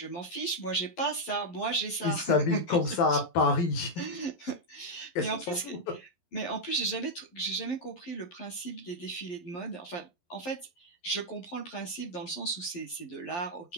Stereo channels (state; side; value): late; right; 11 ms